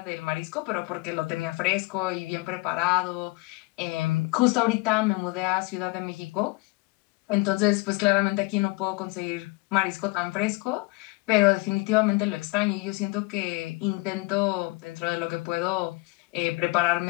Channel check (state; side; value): quieter; right; 24.3 dB